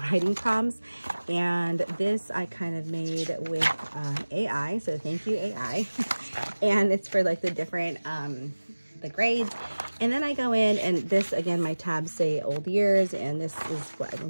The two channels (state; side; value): inverted; both; correlation -1.00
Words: writing prompts, and this I kind of made with AI, so thank you AI. And it's for like the different the grades. And then I go in, and this again, my tabs say old years, and this is what